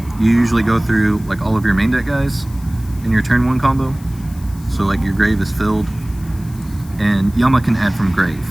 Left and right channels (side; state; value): left; noise; hiss, 23 dB below the sound